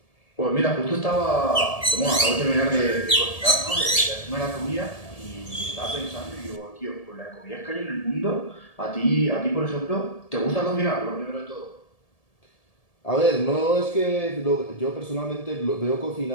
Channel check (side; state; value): right; late; 1.7 ms